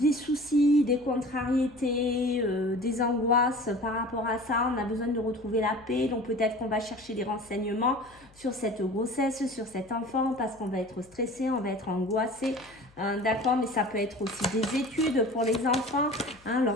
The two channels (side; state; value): left; noise; hum, 28 dB below the sound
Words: soucis, des contrariétés, des angoisses par rapport à ça. On a besoin de retrouver la paix, donc peut-être qu'on va chercher des renseignements sur cette grossesse, sur cet enfant, parce qu'on va être stressé, on va être angoissé. D'accord, mais ça peut être aussi des études pour les enfants, hein,